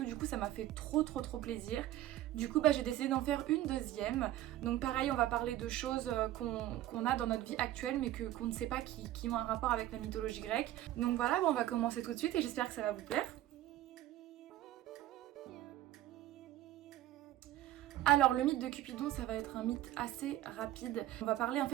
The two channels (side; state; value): left; quieter; 14.1 dB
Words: du coup ça m'a fait trop plaisir. Du coup j'ai décidé d'en faire une deuxième. Donc pareil, on va parler de choses qu'on a dans notre vie actuelle mais qu'on ne sait pas qui ont un rapport avec la mythologie grecque. Donc voilà, on va commencer tout de suite et j'espère que ça va vous plaire. Alors le mythe de Cupidon, ça va être un mythe assez rapide. On va parler en